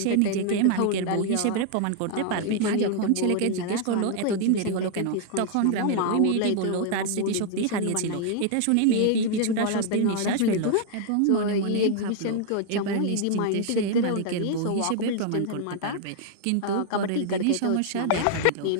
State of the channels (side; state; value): both; different; correlation 0.00